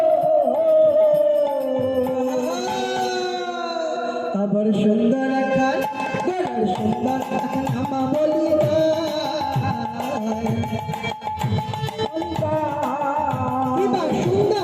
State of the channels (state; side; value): identical; both; correlation 1.00